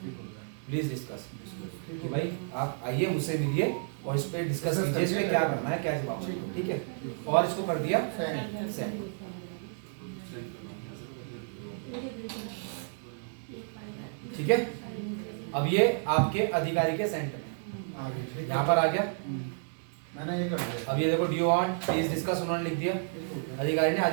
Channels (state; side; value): silent; left; digital silence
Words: प्लीज डिस्कस, कि भाई आप आइए मुझसे मिलिए और इस पे डिस्कस कीजिए, इस पे क्या करना है, क्या जवाब देना है, ठीक है, और इसको कर दिया सेंड। ठीक है, अब ये आपके अधिकारी के सेंटर में यहाँ पर आ गया, मैंने ये कर दिया। अब ये देखो डू वांट प्लीज डिस्कस उन्होंने लिख दिया, अधिकारी ने,